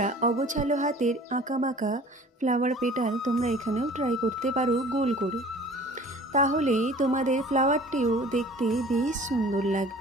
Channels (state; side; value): normal; both; correlation 0.47